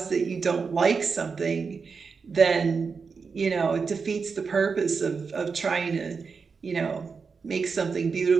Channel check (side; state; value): left; quieter; 5.2 dB